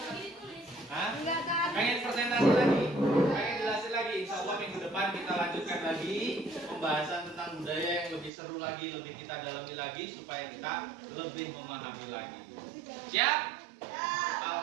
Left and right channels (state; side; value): drops out; left; at 8.3 s